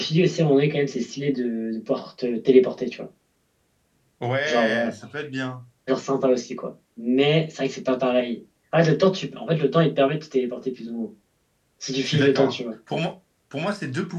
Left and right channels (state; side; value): identical; both; correlation 1.00